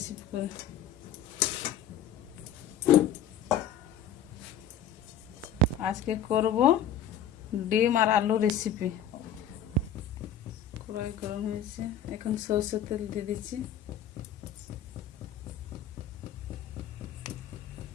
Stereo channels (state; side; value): quieter; right; 7.4 dB